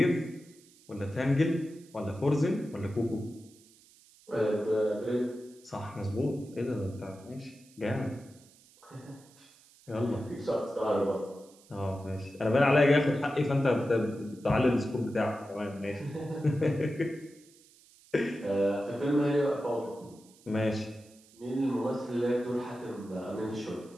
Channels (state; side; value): noise; right; hiss, 27 dB below the sound